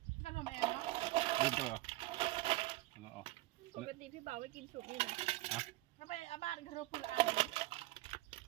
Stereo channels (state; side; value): quieter; left; 18.9 dB